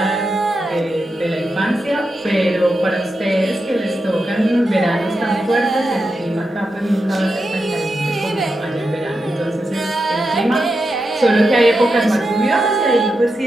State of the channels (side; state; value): both; normal; correlation 0.88